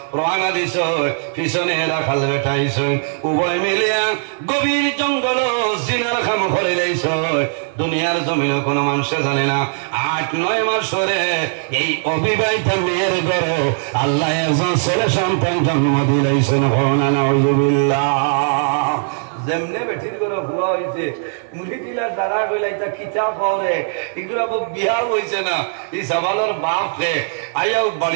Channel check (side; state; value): left; silent; 66 dB below the other